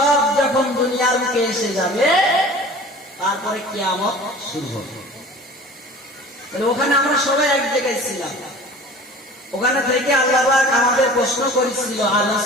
যখন দুনিয়ার বুকে এসে যাবে, তারপরে কিয়ামত শুরু হবে। ওখানে আমরা সবাই এক জায়গায় ছিলাম। ওখানে থেকে আল্লাহ পাক আমাদের প্রশ্ন করেছিল,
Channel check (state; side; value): normal; both; correlation 0.42